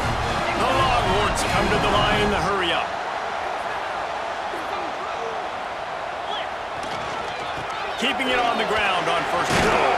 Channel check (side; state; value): both; identical; correlation 1.00